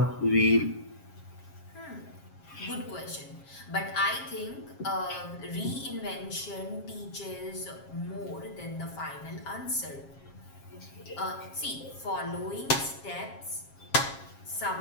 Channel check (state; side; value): late; right; 7.4 ms